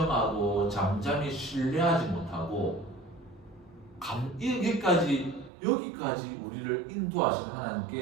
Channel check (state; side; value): drops out; left; at 5.5 s